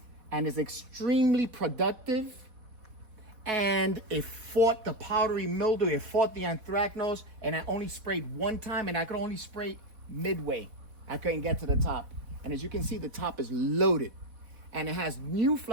and is extremely productive. And it fought the powdery mildew, it fought the anthracnose, and I only sprayed one time, and I could only spray midway. I couldn't get to the top. And as you can see, the top is loaded. And it has new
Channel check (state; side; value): late; left; 4.1 ms